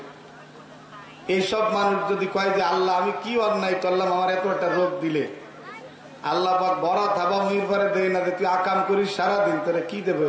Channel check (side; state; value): both; identical; correlation 1.00